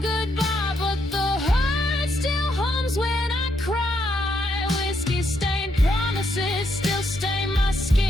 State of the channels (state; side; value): normal; both; correlation 0.77